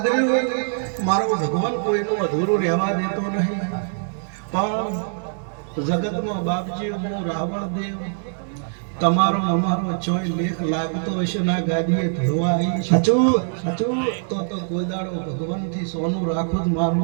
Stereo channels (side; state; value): left; silent; digital silence